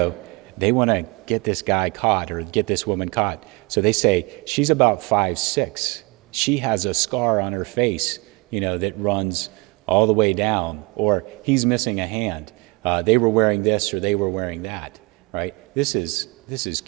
they want to get this guy caught or get this woman caught. So they say, she's about 5'6". She has a scar on her face, that runs all the way down, or he's missing a hand. They were wearing this or they were wearing that, right? This is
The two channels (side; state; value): left; quieter; 26.2 dB